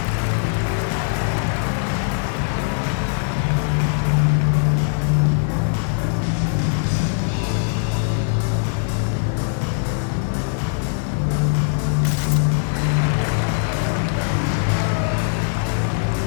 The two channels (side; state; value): right; silent; 65 dB below the other